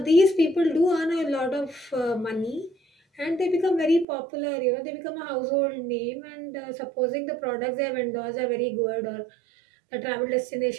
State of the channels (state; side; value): drops out; left; at 4.0 s